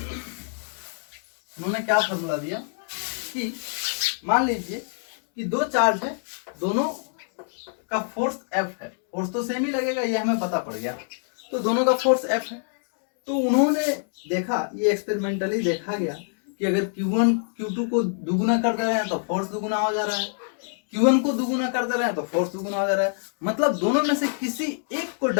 उन्होंने क्या फॉर्मूला दिया कि मान लीजिए कि दो चार्ज है, दोनों का फोर्स F है, फोर्स तो सेम ही लगेगा, ये हमें पता पड़ गया। तो दोनों का फोर्स F है। तो उन्होंने देखा, ये एक्सपेरिमेंटली देखा गया कि अगर Q1 Q2 को दुगुना कर दे रहे हैं तो फोर्स दुगुना हो जा रहा है, Q1 को दुगुना कर दे रहे हैं तो फोर्स दुगुना हो जा रहा है, मतलब दोनों में से किसी एक को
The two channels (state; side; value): silent; right; digital silence